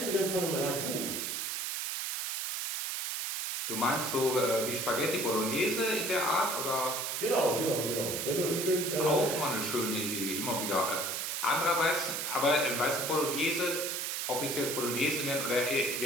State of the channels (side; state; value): right; noise; hiss, 2 dB below the sound